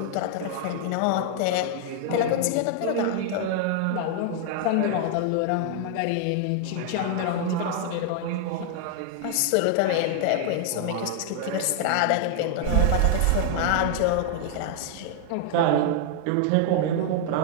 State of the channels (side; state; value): both; different; correlation 0.00